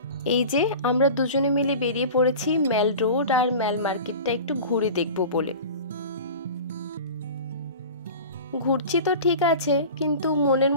এই যে আমরা দুজনে মিলে বেরিয়ে পড়েছি ম্যাল রোড আর ম্যাল মার্কেটটা একটু ঘুরে দেখব বলে। ঘুরছি তো ঠিক আছে, কিন্তু মনের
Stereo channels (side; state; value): both; inverted; correlation -0.36